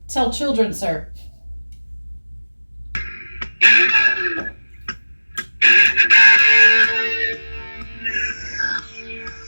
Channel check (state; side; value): inverted; both; correlation -1.00